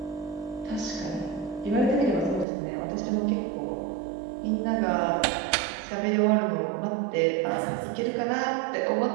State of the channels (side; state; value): left; drops out; at 2.5 s